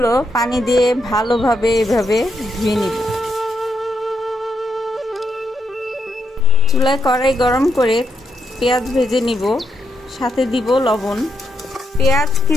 পানি দিয়ে ভালোভাবে এভাবে ধুয়ে নিব। চুলায় কড়াই গরম করে পেঁয়াজ ভেজে নিব, সাথে দিব লবণ। পেঁয়াজ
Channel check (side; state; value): both; normal; correlation 0.81